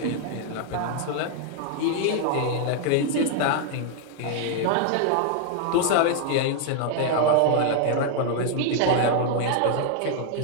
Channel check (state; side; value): different; both; correlation 0.00